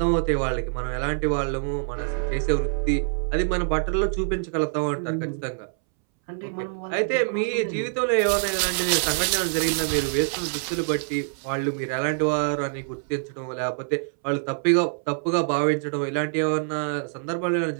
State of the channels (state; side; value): silent; left; 62 dB below the other